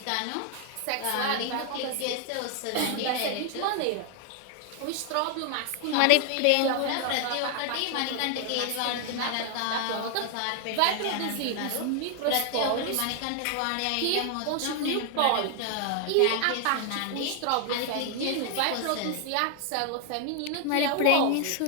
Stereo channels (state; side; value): different; both; correlation 0.00